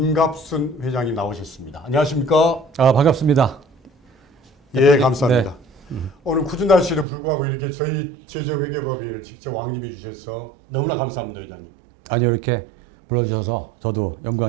회장님 나오셨습니다. 안녕하십니까? 반갑습니다. 예, 감사합니다. 네. 오늘 굳은 날씨에도 불구하고 이렇게 저희 재정회계법인을 직접 왕님해 주셔서 너무나 감사합니다, 회장님. 아니 이렇게 불러주셔서 저도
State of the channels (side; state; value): left; drops out; at 7.1 s